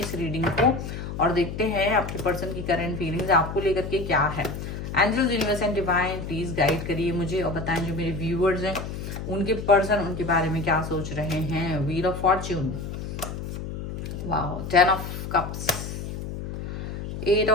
रीडिंग को और देखते हैं आपके पर्सन की करंट फीलिंग्स आपको लेकर के क्या है। Angels, universe and divine please guide करिए मुझे और बताएं जो मेरे व्यूअर्स हैं उनके पर्सन उनके बारे में क्या सोच रहे हैं। Wheel of fortune, wow, 10 of cups, 8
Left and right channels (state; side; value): noise; left; hum, 7 dB below the sound